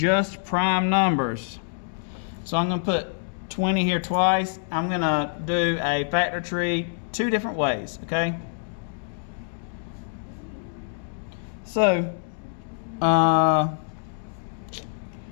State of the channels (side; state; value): right; silent; digital silence